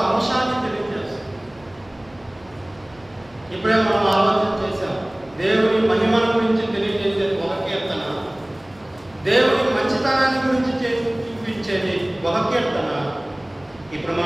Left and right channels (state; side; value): noise; right; hum, 28 dB below the sound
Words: అంశాన్ని తెలియజేస్తుంది. ఇప్పుడే మనం ఆలోచన చేశాం. దేవుని మహిమల గురించి తెలియజేసేది ఒక కీర్తన, దేవుని మంచితనాన్ని గురించి చూపించేది ఒక కీర్తన. ఇప్పుడు